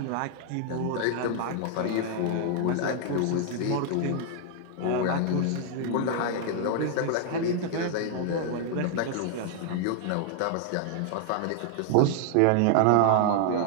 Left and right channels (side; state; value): both; different; correlation 0.00